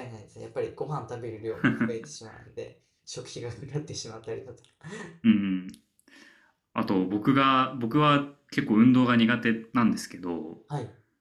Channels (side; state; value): both; identical; correlation 1.00